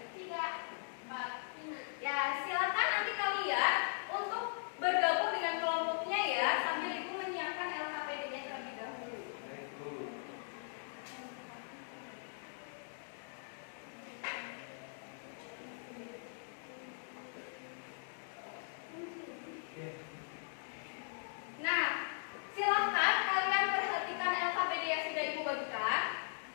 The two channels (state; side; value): silent; right; digital silence